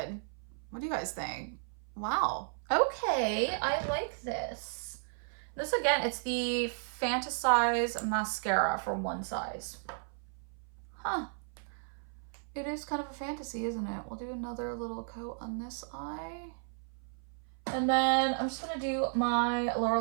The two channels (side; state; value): left; silent; 55 dB below the other